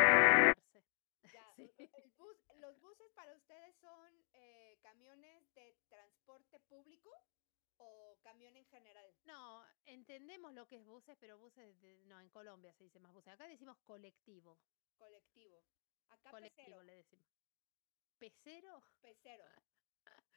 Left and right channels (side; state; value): right; silent; digital silence